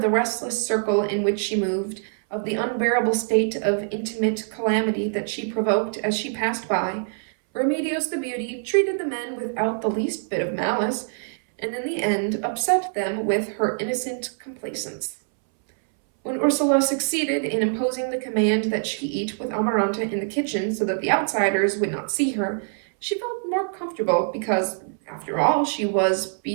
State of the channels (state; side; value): silent; left; 62 dB below the other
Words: the restless circle in which she moved, of the unbearable state of intimate calamity that she provoked as she passed by. Remedios the beauty treated the men without the least bit of malice, and in the end upset them with her innocent complacence. When Ursula succeeded in imposing the command that she eat with Amaranta in the kitchen so that the outsiders would not see her, she felt more comfortable because, after all, she was